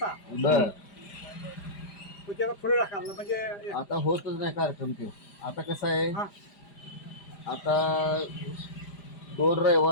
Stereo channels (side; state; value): right; late; 5.0 ms